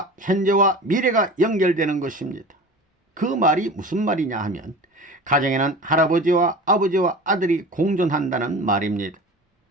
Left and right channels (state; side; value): normal; both; correlation 0.36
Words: 현재와 미래가 연결되는 것입니다. 그 말이 무슨 말이냐 하면, 가정에는 할아버지와 아버지와 아들이 공존한다는 말입니다.